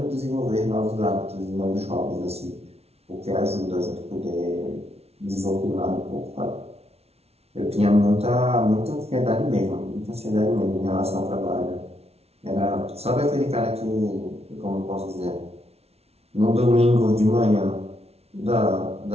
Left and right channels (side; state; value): left; late; 0.30 ms